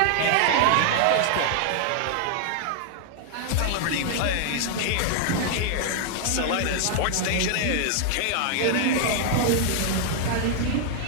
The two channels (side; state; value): both; different; correlation 0.00